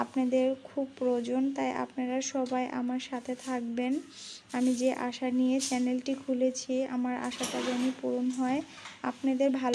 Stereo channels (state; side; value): identical; both; correlation 1.00